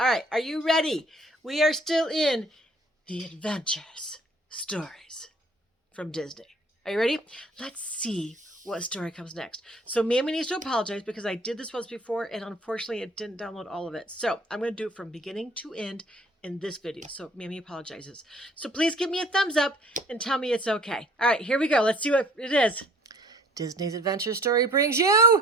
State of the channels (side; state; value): both; normal; correlation 0.55